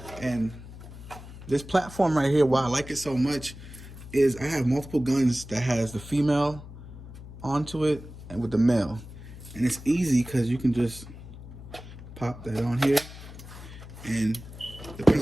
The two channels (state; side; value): noise; left; hum, 15 dB below the sound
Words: And this platform right here, why I like it so much is I have multiple guns that has the female onto it and with the male. And it's easy because you can just pop that on here, and